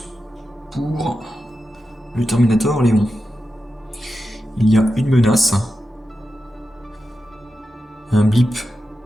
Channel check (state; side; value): normal; both; correlation 0.91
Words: pour le Terminator Léon. Il y a une menace, un blip